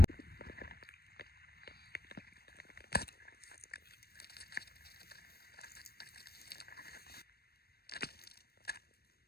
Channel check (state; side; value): late; right; 0.46 ms